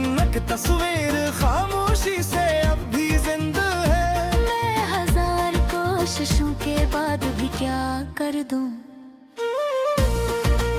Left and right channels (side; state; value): both; identical; correlation 1.00